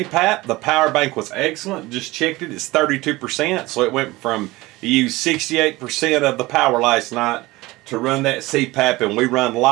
The power bank was excellent. Just checked it. It's 32%, so it went from you used 68% of the power last night to run that CPAP, and we run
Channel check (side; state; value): left; quieter; 20.1 dB